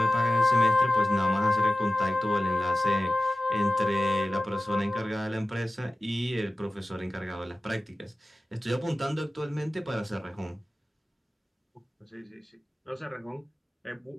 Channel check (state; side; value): normal; both; correlation 0.96